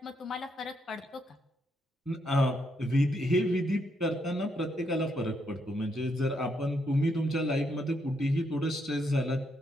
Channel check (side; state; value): both; normal; correlation 0.77